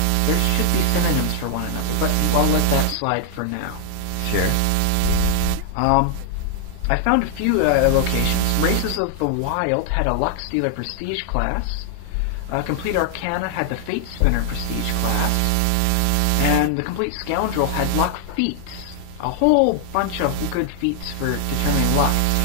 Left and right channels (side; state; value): both; different; correlation 0.00